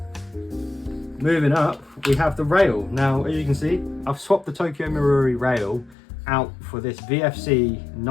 Moving up, we have the rail. Now, as you can see, I've swapped the Tokyo Marui rail out for this VFC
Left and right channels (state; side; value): drops out; right; at 6.0 s